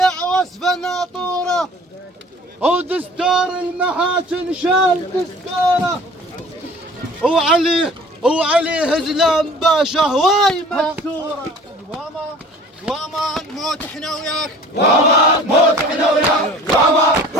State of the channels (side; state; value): both; normal; correlation 0.47